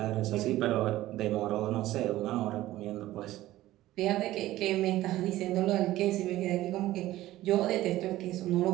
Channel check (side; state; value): left; quieter; 15.6 dB